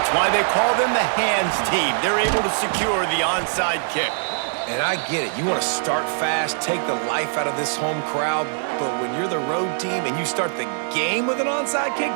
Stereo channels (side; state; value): left; silent; 64 dB below the other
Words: why they call them the hands team. They're able to secure the onside kick. And I get it. You want to start fast, take the life out of this home crowd. But when you're the road team and you start the game with an onside kick,